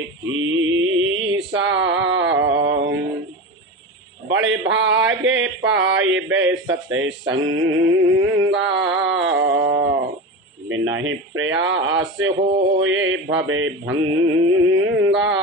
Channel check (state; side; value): normal; both; correlation 0.25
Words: कीसा। बड़े भागे पाए बे सत्संगा, बिना ही प्रयास होए भवे भंगा।